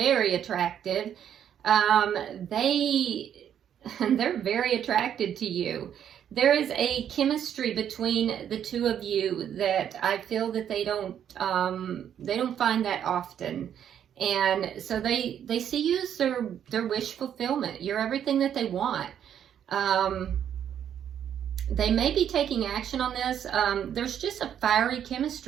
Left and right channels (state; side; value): quieter; left; 9.4 dB